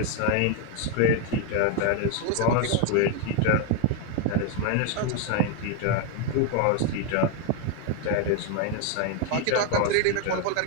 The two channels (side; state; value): both; different; correlation 0.01